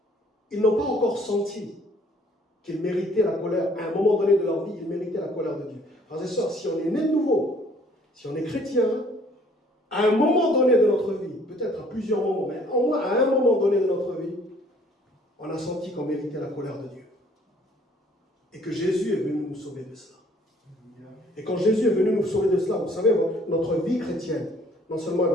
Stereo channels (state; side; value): normal; both; correlation 0.59